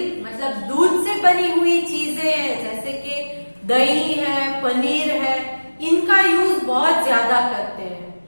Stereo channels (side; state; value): both; inverted; correlation -1.00